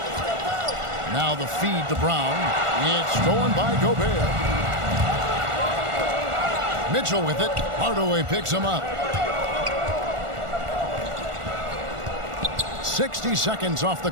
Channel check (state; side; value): late; left; 1.4 ms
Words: Now the feed to Brown. It's stolen by Gobert. Mitchell with it. Hardaway picks him up. 60 seconds off the